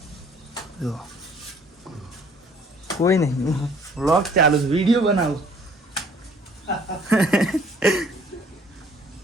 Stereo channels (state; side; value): normal; both; correlation 0.57